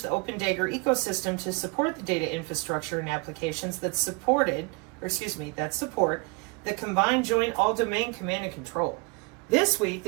the Open Dagger ecosystem to support the data infrastructure and applications that support the combined joint all-domain command and control. This week,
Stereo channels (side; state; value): left; quieter; 28.7 dB